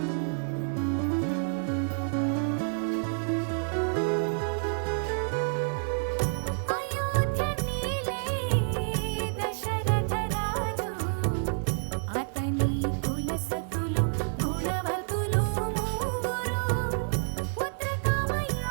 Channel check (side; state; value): left; silent; 57 dB below the other